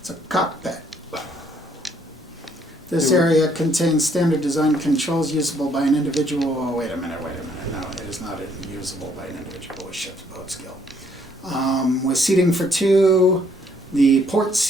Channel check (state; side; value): normal; both; correlation 0.66